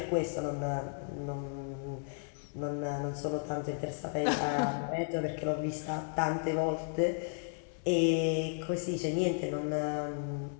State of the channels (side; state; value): right; silent; 55 dB below the other